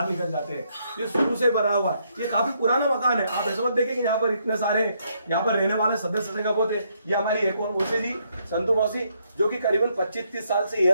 निकल जाते हैं। ये शुरू से बना हुआ है, ये काफी पुराना मकान है। आप ऐसा मत देखें कि यहाँ पर इतने सारे यहाँ पर रहने वाले सदस्य का बहुत है। ये हमारी एक और मौसी जी, संतु मौसी, जो कि करीबन 25-30 साल से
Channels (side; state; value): both; inverted; correlation -0.74